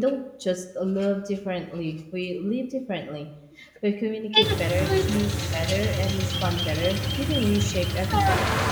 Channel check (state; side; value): identical; both; correlation 1.00